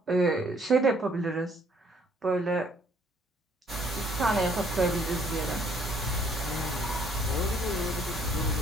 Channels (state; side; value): normal; both; correlation 0.63